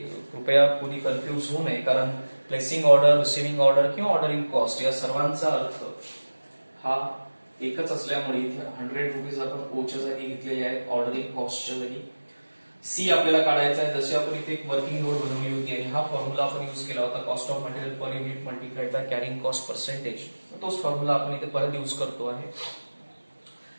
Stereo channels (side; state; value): both; inverted; correlation -1.00